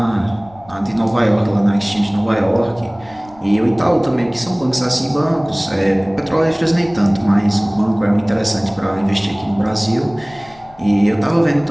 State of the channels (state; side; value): noise; left; rumble, 25 dB below the sound